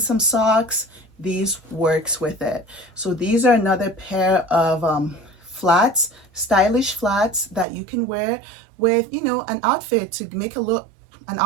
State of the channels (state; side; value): drops out; left; at 7.7 s